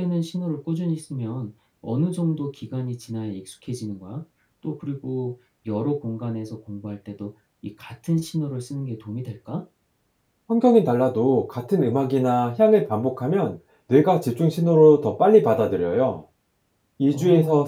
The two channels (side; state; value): both; identical; correlation 1.00